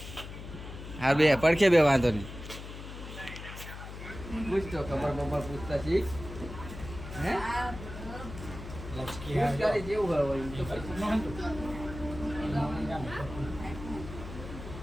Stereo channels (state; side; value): noise; left; hum, 11 dB below the sound